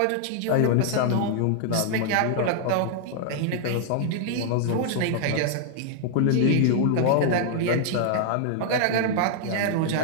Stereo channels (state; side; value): different; both; correlation -0.01